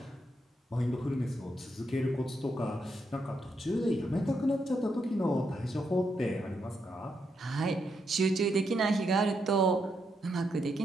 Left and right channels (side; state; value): both; normal; correlation 0.80